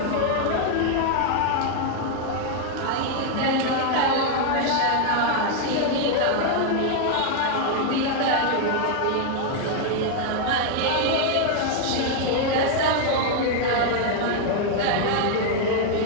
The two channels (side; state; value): both; different; correlation 0.00